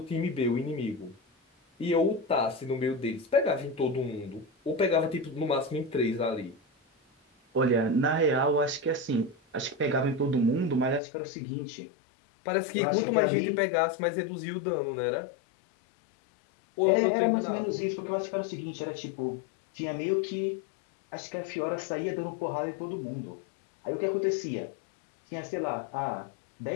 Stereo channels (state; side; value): drops out; right; at 11.0 s